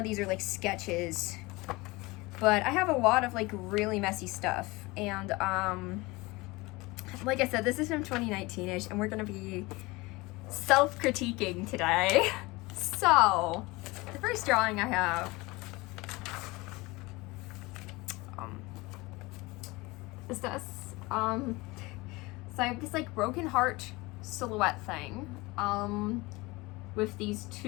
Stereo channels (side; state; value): right; quieter; 22.8 dB